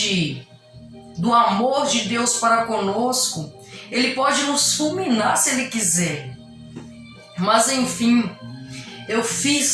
do amor de Deus para conosco. Ele pode nos fulminar se Ele quiser. Mas enfim, eu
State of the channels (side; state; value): both; identical; correlation 1.00